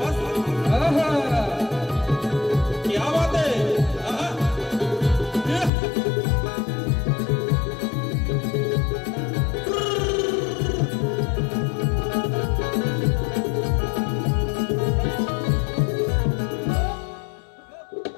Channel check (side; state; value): right; drops out; at 5.7 s